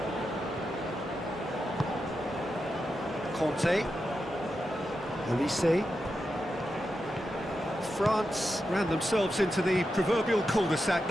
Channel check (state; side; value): normal; both; correlation 0.88